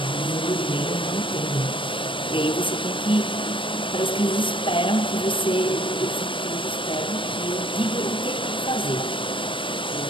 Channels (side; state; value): right; late; 0.25 ms